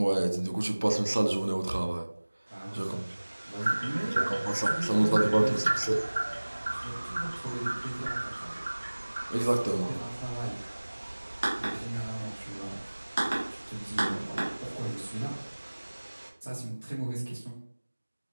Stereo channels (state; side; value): inverted; both; correlation -1.00